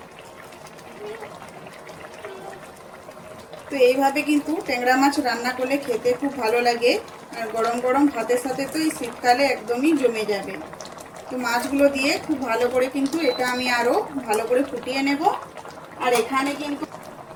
তো এইভাবে কিন্তু ট্যাংরা মাছ রান্না করলে খেতে খুব ভালো লাগে, আর গরম গরম ভাতের সাথে তো এই শীতকালে একদমই জমে যাবে। তো মাছগুলো দিয়ে খুব ভালো করে কিন্তু এটা আমি আরও ভালো করে ফুটিয়ে নেব। আর এখানে কিন্তু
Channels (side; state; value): both; identical; correlation 1.00